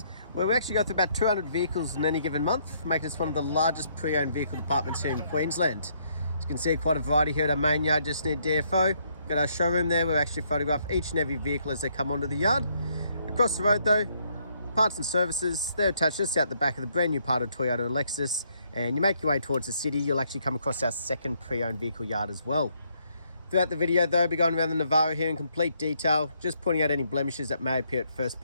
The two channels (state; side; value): inverted; both; correlation -0.71